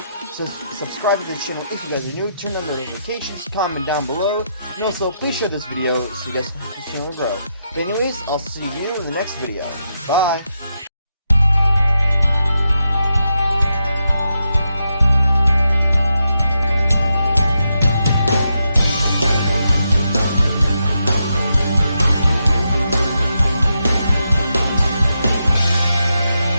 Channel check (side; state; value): both; inverted; correlation -0.83